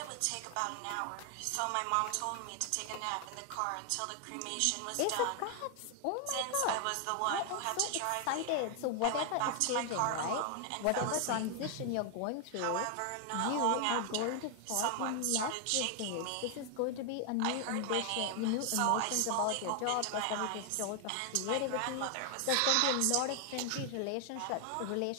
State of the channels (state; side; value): different; both; correlation 0.00